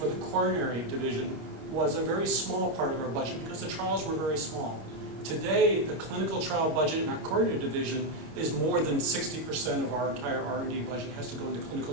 the coronary division was a very small part of our budget because the trials were very small. Today, the clinical trial budget in our coronary division is more than 60% of our entire R&D budget has to go into clinical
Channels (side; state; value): left; late; 26 ms